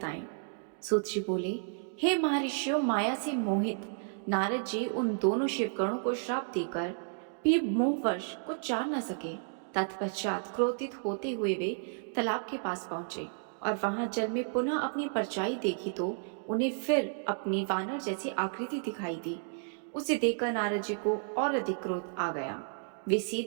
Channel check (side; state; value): left; silent; digital silence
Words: सूत जी बोले, हे महर्षियों, माया से मोहित नारद जी उन दोनों शिवगणों को श्राप देकर भी मोहवश कुछ जान न सके। तत्पश्चात क्रोधित होते हुए वे तालाब के पास पहुंचे और वहां जल में पुनः अपनी परछाई देखी तो उन्हें फिर अपनी वानर जैसी आकृति दिखाई दी। उसे देखकर नारद जी को और अधिक क्रोध आ गया। वे